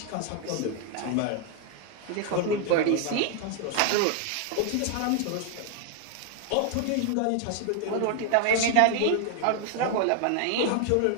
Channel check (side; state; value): both; different; correlation 0.00